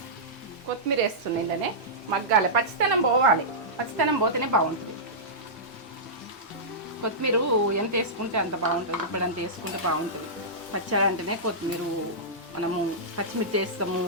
కొత్తిమీర వేస్తున్నాయి, ఇలానే మగ్గాలి. పచ్చితనం పోవాలి, పచ్చితనం పోతేనే బాగుంటుంది. కొత్తిమీర ఎంత వేసుకుంటే అంత బాగుంటుంది. ఇప్పుడు అంత వేసుకుంటే బాగుంటుంది. పచ్చడి అంటేనే కొత్తిమీర, మనము పచ్చిమిర్చి వేస్తాము,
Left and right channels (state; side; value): normal; both; correlation -0.15